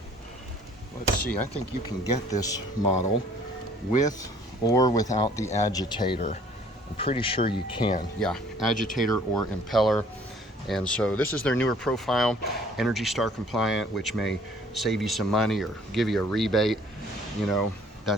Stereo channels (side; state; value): both; normal; correlation 0.56